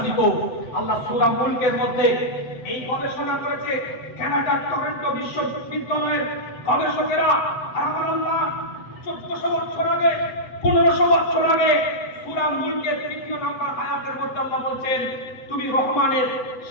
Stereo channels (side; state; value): right; late; 7.9 ms